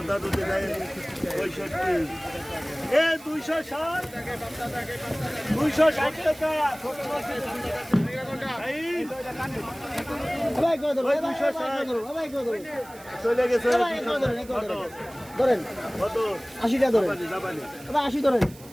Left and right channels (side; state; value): right; noise; hiss, 21 dB below the sound